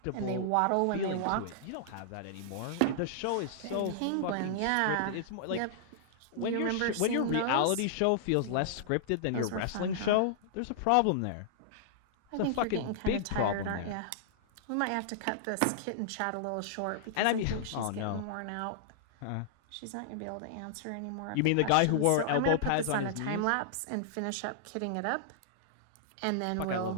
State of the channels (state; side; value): different; both; correlation -0.01